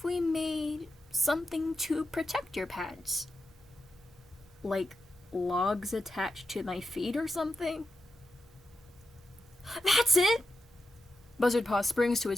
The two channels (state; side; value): normal; both; correlation 0.87